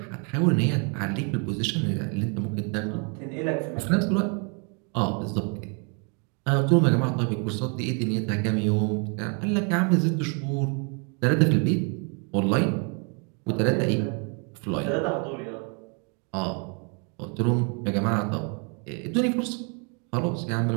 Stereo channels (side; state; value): left; quieter; 36.7 dB